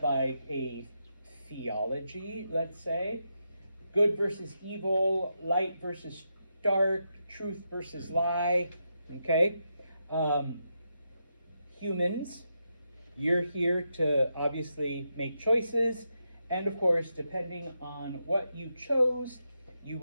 like a theology, let's say, good versus evil, light versus dark, truth versus lie, okay? Humans, you're here to obviously make choices, and of course, depending on what you chose, you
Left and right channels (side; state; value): both; inverted; correlation -0.85